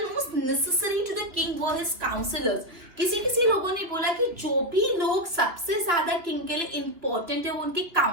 most necessary to the king were his counselors. किसी लोगों ने बोला कि जो भी लोग सबसे ज्यादा किंग के लिए इंपॉर्टेंट है वो उनके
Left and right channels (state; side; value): late; left; 2.7 ms